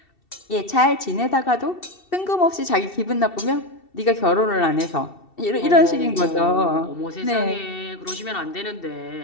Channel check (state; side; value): late; right; 2.7 ms